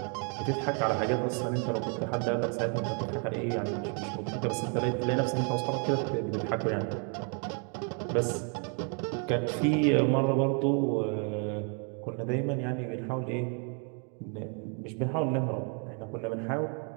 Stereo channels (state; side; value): quieter; left; 39.0 dB